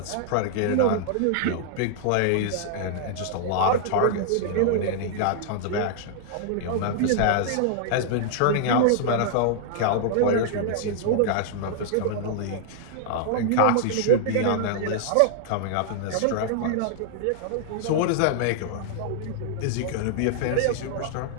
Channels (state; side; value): different; both; correlation -0.01